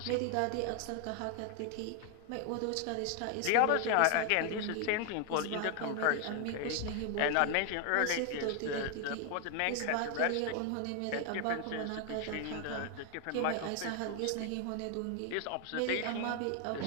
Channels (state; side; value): different; both; correlation 0.01